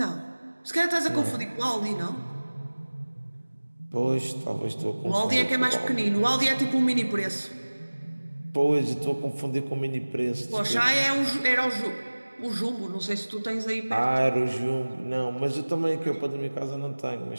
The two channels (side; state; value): both; inverted; correlation -1.00